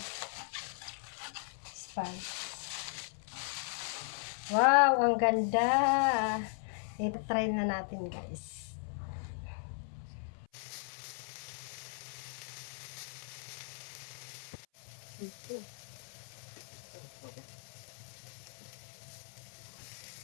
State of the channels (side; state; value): right; silent; 53 dB below the other